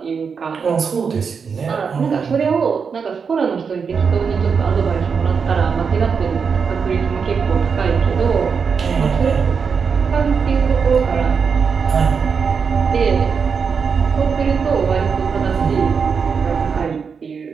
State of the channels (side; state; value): left; quieter; 5.9 dB